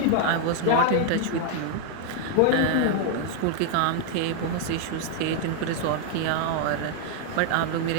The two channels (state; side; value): different; both; correlation 0.00